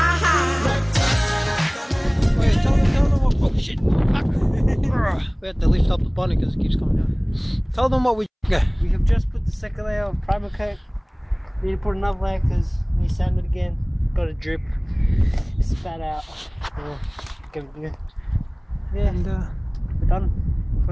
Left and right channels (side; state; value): both; identical; correlation 1.00